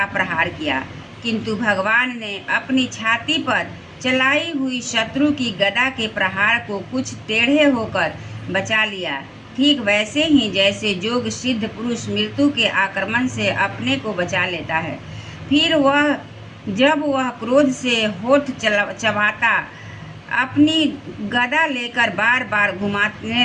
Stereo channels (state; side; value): identical; both; correlation 1.00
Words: प्रहार किया, किंतु भगवान ने अपनी छाती पर चलाई हुई शत्रु की गदा के प्रहार को कुछ टेढ़े होकर बचा लिया, ठीक वैसे ही जैसे योग सिद्ध पुरुष मृत्यु के आक्रमण से अपने को बचा लेता है। फिर जब वह क्रोध से होठ चबाता अपनी गदा लेकर बार बार